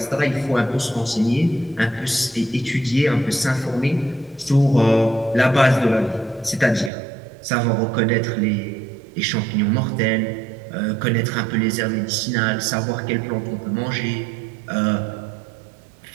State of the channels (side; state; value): left; drops out; at 6.9 s